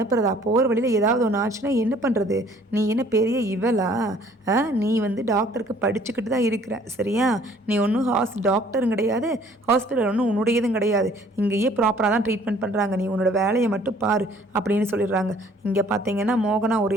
போகிற வழியில் ஏதாவது ஒன்று ஆச்சுன்னா என்ன பண்ணுறது, நீ என்ன பெரிய இவளா? நீ டாக்டருக்கு படிச்சுக்கிட்டு தான் இருக்கிற சரியா? நீ ஒன்றும் டாக்டரும் கிடையாது, ஹாஸ்பிட்டல் ஒன்றும் உன்னுடையதும் கிடையாது, இங்கேயே ப்ராப்பராக தான் ட்ரீட்மெண்ட் பண்ணுறாங்க, நீ உன்னோட வேலையை மட்டும் பாரு அப்படின்னு சொல்லிடுறாங்க. இங்கே பார்த்தீங்கன்னா மோகனா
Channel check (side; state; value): both; normal; correlation 0.57